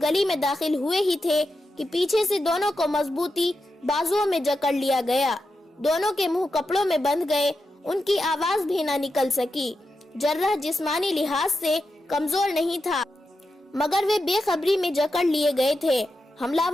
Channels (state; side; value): normal; both; correlation 0.88